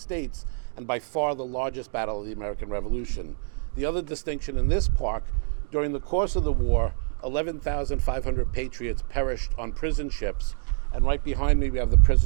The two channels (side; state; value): left; silent; digital silence